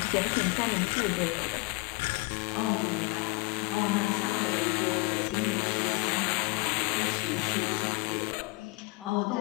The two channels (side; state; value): right; quieter; 25.5 dB